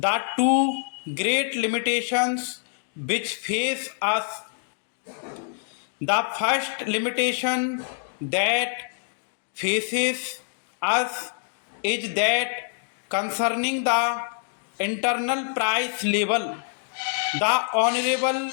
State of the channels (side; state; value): right; silent; digital silence